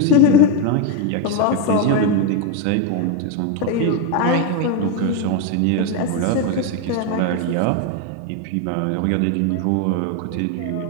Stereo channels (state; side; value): different; both; correlation 0.03